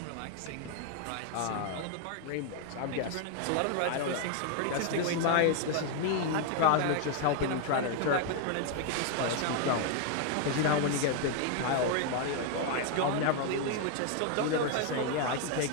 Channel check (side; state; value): both; different; correlation 0.01